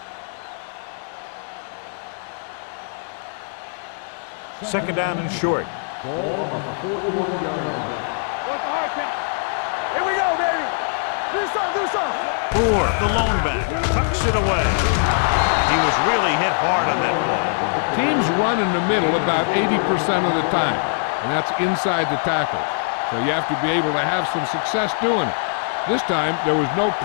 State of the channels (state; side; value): silent; right; digital silence